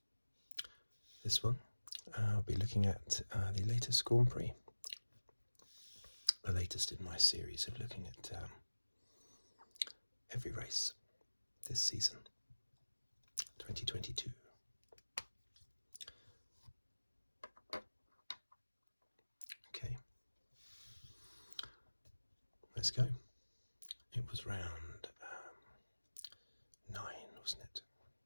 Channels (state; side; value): inverted; both; correlation -1.00